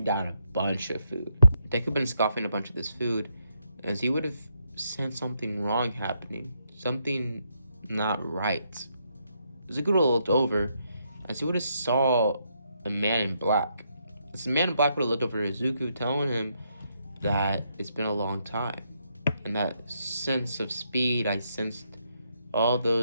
down a bunch of food. Deku been scoffing a bunch of this food as he would have sensed something wrong happening, something not right. Izuku would have looked over as he would have saw a man in black. This man in black would have looked over at Izuku, telling him that it's been a long time, and that sense of speed I sensed all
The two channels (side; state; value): both; inverted; correlation -0.77